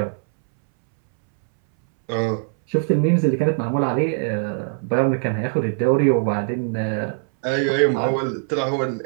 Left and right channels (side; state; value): left; silent; 64 dB below the other